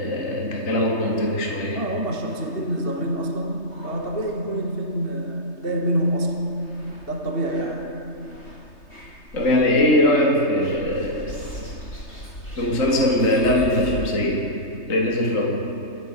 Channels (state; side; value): late; right; 3.3 ms